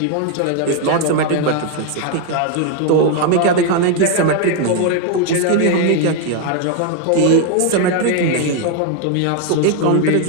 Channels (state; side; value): different; both; correlation 0.00